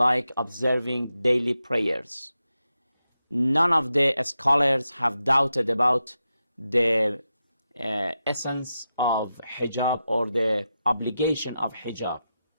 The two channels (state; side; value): inverted; both; correlation -0.89